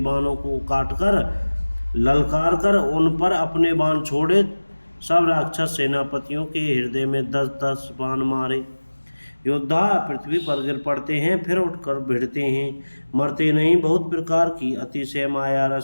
को काटकर ललकार कर उन पर अपने बाण छोड़े। सब राक्षस सेनापतियों के हृदय में 10-10 बाण मारे। योद्धा पृथ्वी पर गिर पड़ते हैं, फिर उठकर भिड़ते हैं, मरते नहीं। बहुत प्रकार की अतिशय माया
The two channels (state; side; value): inverted; both; correlation -1.00